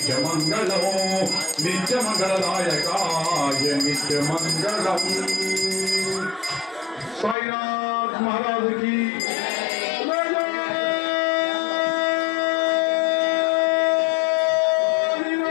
నిత్యమంగళదాయకాయ నిత్యమంగళం। साईनाथ महाराज की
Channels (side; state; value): right; drops out; at 7.4 s